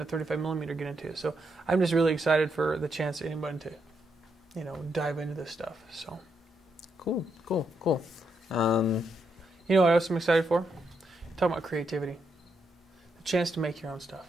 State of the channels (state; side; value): normal; both; correlation 0.80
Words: 35mm get into it. So I'm just really excited for the chance of anybody to, dive into this stuff. So Cool. You know what else I'm excited for? Talking about creativity. The chance to make your own stuff.